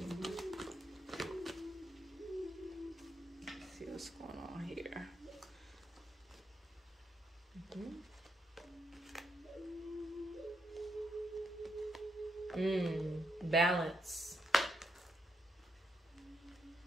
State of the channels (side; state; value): both; normal; correlation 0.80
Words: Let's see what's going on here. Balance.